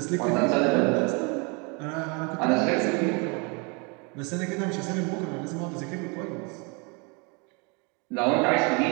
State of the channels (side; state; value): left; quieter; 31.8 dB